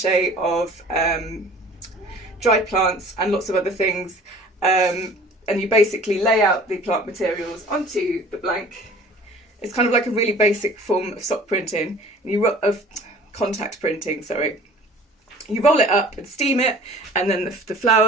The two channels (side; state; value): both; normal; correlation 0.47